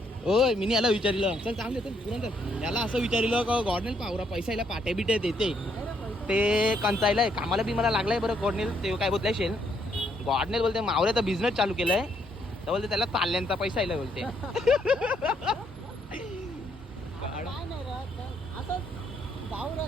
ओय मी याला विचारिलं. चल चांगले चल पुरण चल. याला असं विचारिलं का गॉडनेल पावरा पैसा याला पाट्या बिट्या देते. ते कंचायलाय कामाला बी मला लागलाय बरं. गॉडनेल ते काय बोलताय शेल. गॉडनेल बोलते मावऱ्याचा बिझनेस चालू केलाय. तर बोलते त्याला ताल्ल्यांचा पैसा यायला बोलते.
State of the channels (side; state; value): both; normal; correlation 0.72